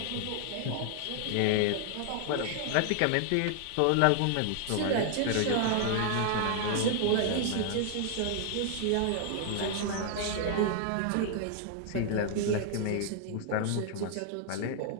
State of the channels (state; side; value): different; both; correlation 0.00